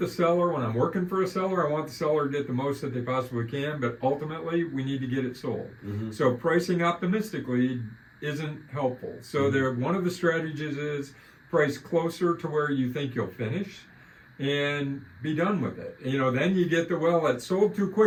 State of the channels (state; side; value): identical; both; correlation 1.00